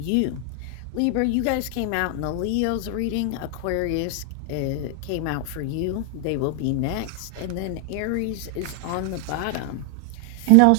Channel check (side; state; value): both; different; correlation 0.00